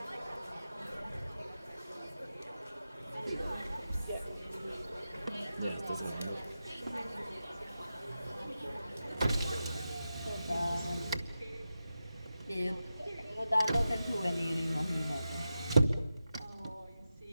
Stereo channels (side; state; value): both; inverted; correlation -0.91